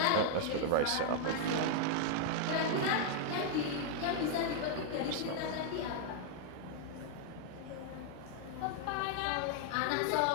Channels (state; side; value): different; both; correlation 0.00